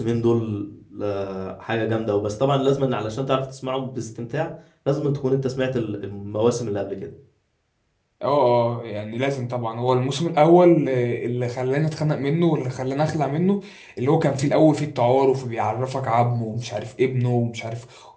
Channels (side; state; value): both; identical; correlation 1.00